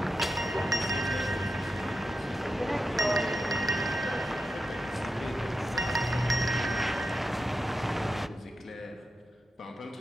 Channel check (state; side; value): normal; both; correlation 0.89